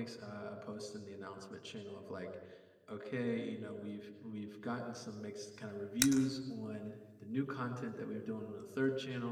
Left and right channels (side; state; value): both; identical; correlation 1.00